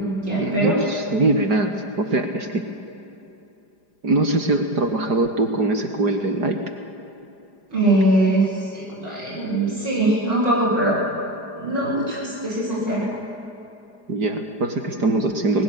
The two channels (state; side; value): late; left; 4.9 ms